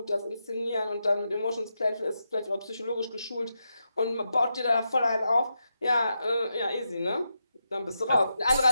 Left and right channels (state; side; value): inverted; both; correlation -0.86